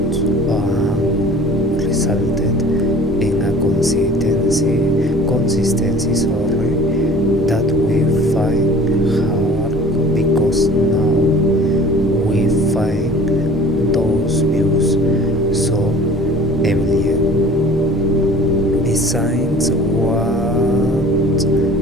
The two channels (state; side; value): normal; both; correlation 0.46